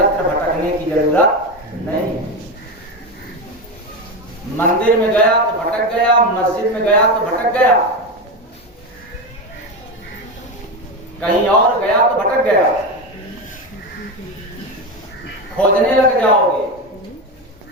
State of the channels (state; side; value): normal; both; correlation 0.16